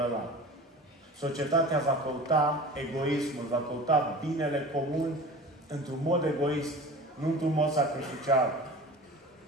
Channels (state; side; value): normal; both; correlation 0.38